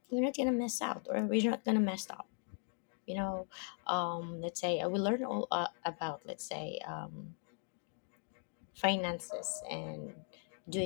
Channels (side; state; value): right; silent; 52 dB below the other